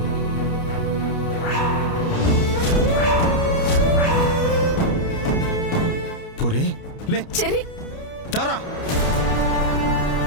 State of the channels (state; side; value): late; right; 29 ms